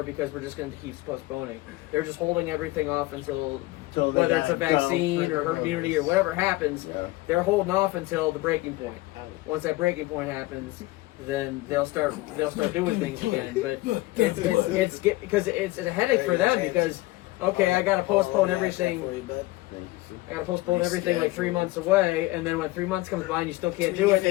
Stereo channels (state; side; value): quieter; right; 19.7 dB